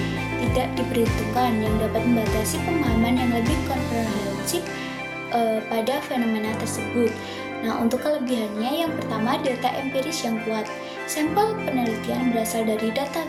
tidak diperhitungkan yang dapat membatasi pemahaman yang lebih komprehensif pada fenomena tersebut. Nah, untuk kelebihannya, yang pertama, data empiris yang kuat. Sampel penelitian berasal dari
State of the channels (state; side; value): identical; both; correlation 1.00